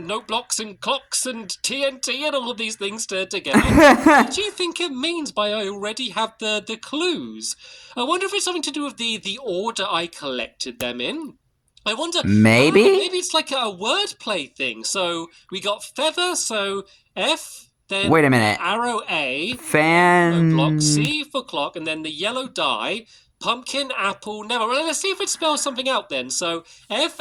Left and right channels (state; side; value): identical; both; correlation 1.00